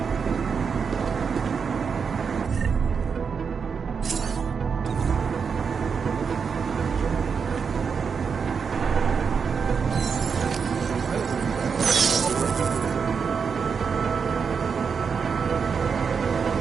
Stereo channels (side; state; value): left; quieter; 6.0 dB